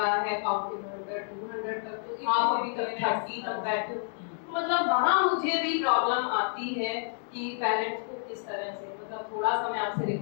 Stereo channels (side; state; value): right; silent; digital silence